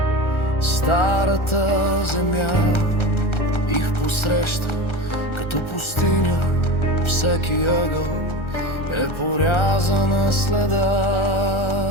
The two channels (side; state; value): right; late; 1.3 ms